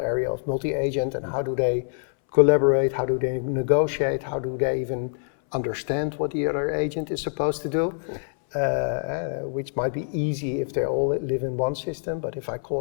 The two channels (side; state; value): right; silent; 62 dB below the other